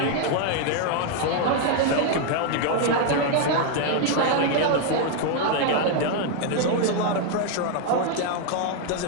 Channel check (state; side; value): different; both; correlation 0.00